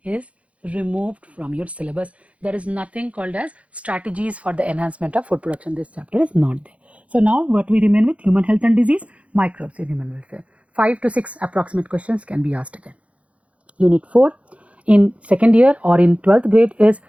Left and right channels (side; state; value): left; late; 0.064 ms